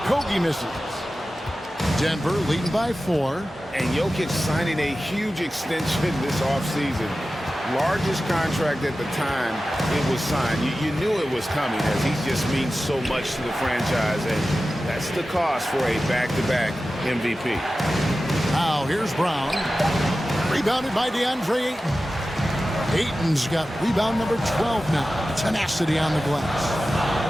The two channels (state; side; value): normal; both; correlation 0.94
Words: misses. Denver leading by 4. And Jokic signing a huge extension this offseason. Largest contract at the time it was signed. You knew it was coming as he just means so much to the franchise. And that's the cost for a back-to-back MVP. Now here's Brown. Rebounded by DeAndre Ayton. Ayton's got rebound number 12 now. Tenacity on the